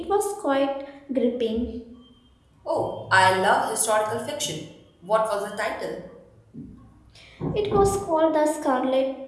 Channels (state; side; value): identical; both; correlation 1.00